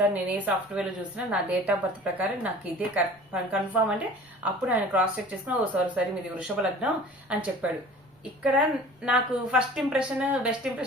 నేను ఏ సాఫ్ట్వేర్ లో చూసినా నా డేట్ ఆఫ్ బర్త్ ప్రకారం నాకు ఇదే కన్ఫర్మ్ అంటే, అప్పుడు ఆయన క్రాస్ చెక్ చేసుకుని, ఓ సారీ మీది వృషభ లగ్నం అని చెప్పాడు. ఇక్కడ నాకు ఫస్ట్ ఇంప్రెషన్ బెస్ట్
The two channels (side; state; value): both; normal; correlation 0.44